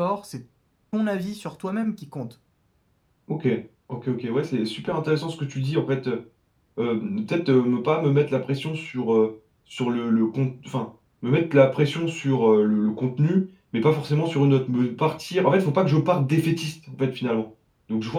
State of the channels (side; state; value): both; identical; correlation 1.00